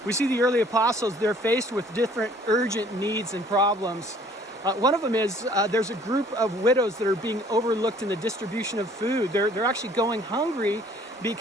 We see the early apostles, they're faced with different urgent needs and problems. One of them is there's a group of widows that are being overlooked in the distribution of food. They're actually going hungry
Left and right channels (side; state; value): both; normal; correlation 0.56